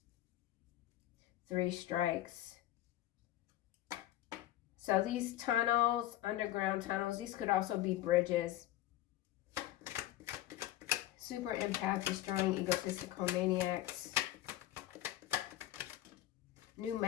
3 strikes. So these tunnels, underground tunnels, these could also be bridges. Super empath destroying egotistical maniacs. New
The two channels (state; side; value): quieter; right; 14.2 dB